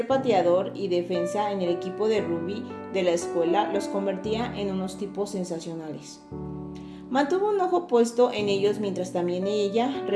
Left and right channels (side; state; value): both; identical; correlation 1.00